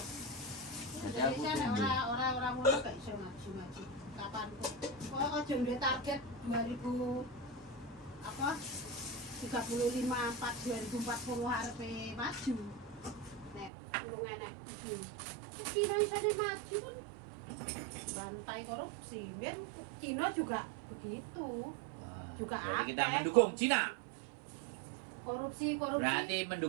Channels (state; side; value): drops out; left; at 13.7 s